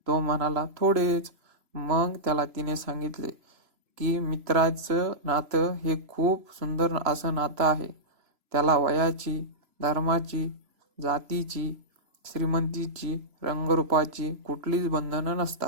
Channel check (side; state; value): left; late; 3.0 ms